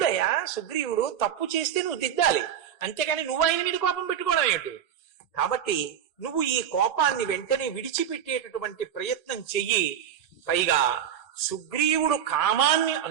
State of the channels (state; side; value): quieter; left; 9.2 dB